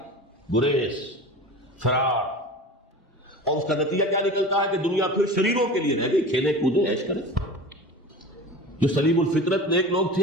گریز، فرار، اور اس کا نتیجہ کیا نکلتا ہے کہ دنیا پھر شریروں کے لیے رہ گئی، کھیلیں کودیں عیش کریں۔ جو سلیم الفطرت نیک لوگ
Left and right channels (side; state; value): both; normal; correlation 0.34